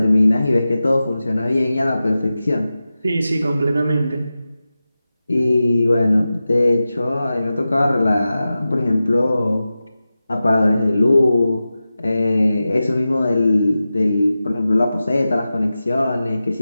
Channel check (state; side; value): inverted; both; correlation -0.94